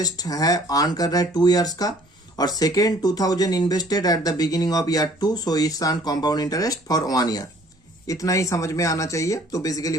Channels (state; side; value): normal; both; correlation 0.56